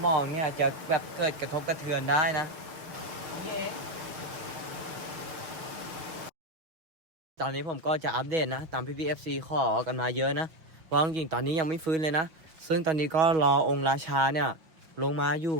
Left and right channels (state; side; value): late; left; 6.1 ms